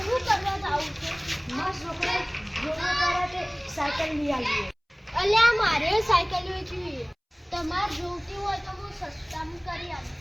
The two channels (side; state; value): both; identical; correlation 1.00